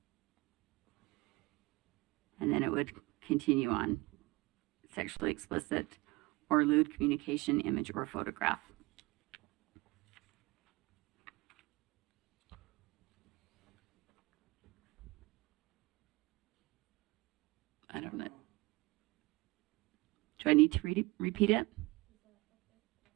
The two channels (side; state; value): left; quieter; 22.8 dB